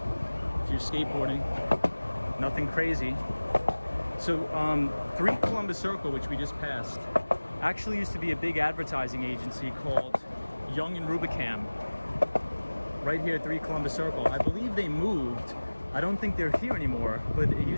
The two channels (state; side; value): inverted; both; correlation -1.00